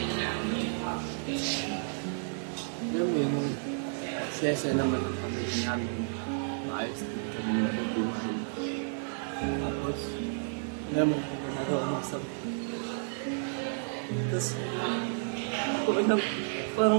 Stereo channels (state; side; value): silent; left; 57 dB below the other